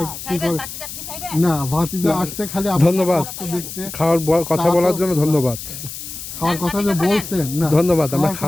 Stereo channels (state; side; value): noise; left; hiss, 10 dB below the sound